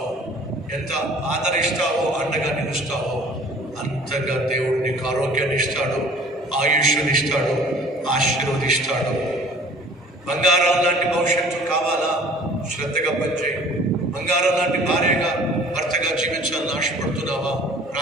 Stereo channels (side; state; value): both; normal; correlation 0.50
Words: ఎంత ఆదరిస్తావో, అండగా నిలుస్తావో అంతగా దేవుడు నీకు ఆరోగ్యాన్ని ఇస్తాడు, ఆయుష్ని ఇస్తాడు, ఆశీర్వదిస్తాడు. బంగారం లాంటి భవిష్యత్తు కావాలా? శ్రద్ధగా పనిచేయి. బంగారం లాంటి భార్యగా భర్తగా జీవించాలని ఆశపడుతున్నావా?